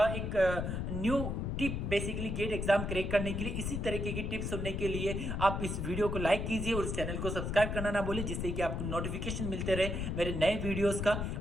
एक new tip basically GATE exam crack करने के लिए। इसी तरीके की टिप्स सुनने के लिए आप इस वीडियो को लाइक कीजिए और इस चैनल को सब्सक्राइब करना ना भूलिए, जिससे कि आपको नोटिफिकेशन मिलते रहे मेरे नए वीडियोस का।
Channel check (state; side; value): noise; left; rumble, 2 dB below the sound